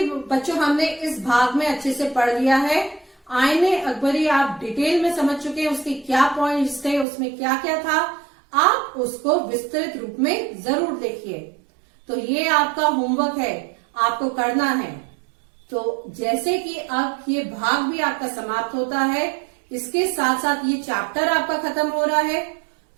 बच्चों हमने इस भाग में अच्छे से पढ़ लिया है। आईने अकबरी आप डिटेल में समझ चुके हैं, उसके क्या पॉइंट्स थे, उसमें क्या क्या था। आप उसको विस्तृत रूप में जरूर देखिए। तो ये आपका होमवर्क है, आपको करना है। तो जैसे कि अब ये भाग भी आपका समाप्त होता है, इसके साथ साथ ये चैप्टर आपका खत्म हो रहा है,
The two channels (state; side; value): drops out; left; at 7.1 s